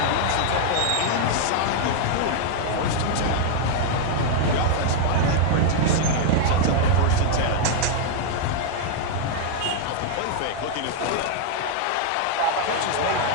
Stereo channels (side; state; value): both; different; correlation 0.00